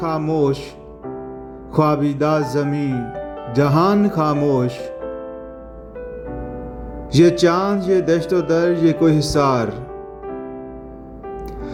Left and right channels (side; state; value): both; identical; correlation 1.00